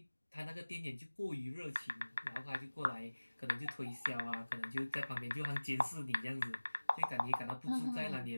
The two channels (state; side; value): inverted; both; correlation -1.00